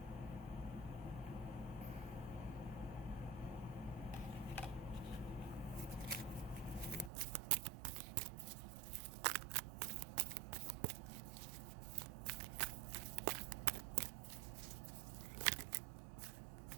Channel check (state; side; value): drops out; left; at 7.1 s